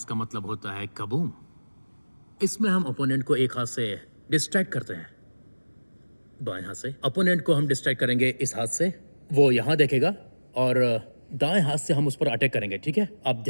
मतलब होता है कबूम। इसमें हम ओपोनेंट को एक हाथ से डिस्ट्रैक्ट करते हैं, बाएं हाथ से। ओपोनेंट को हम डिस्ट्रैक्ट करेंगे इस हाथ से, वो यहाँ देखेगा, और दाएं हाथ से हम उस पर अटैक करेंगे। ठीक है, आप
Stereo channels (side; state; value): both; inverted; correlation -1.00